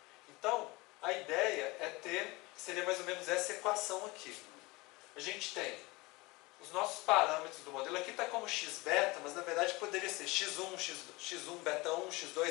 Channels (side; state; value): right; quieter; 23.2 dB